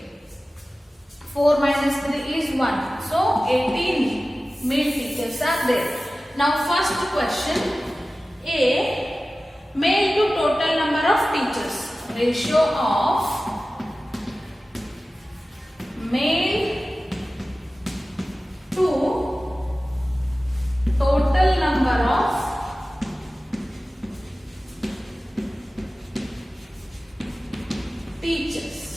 4 minus 3 is 1. So 18 male teachers are there. Now first question. A. Male to total number of teachers. Ratio of male to total number of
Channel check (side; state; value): both; normal; correlation 0.96